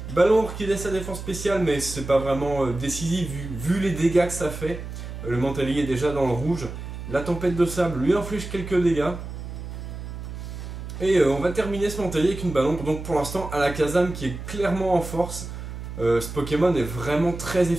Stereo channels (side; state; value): right; noise; hum, 9 dB below the sound